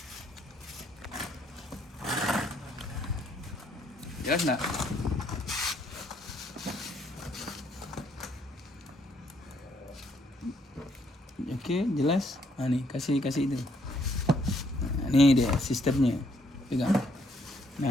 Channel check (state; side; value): normal; both; correlation 0.70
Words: Jelas nggak? Oke, jelas. Nah, nih kasih itu. Nah, ini dia sistemnya. Pegang.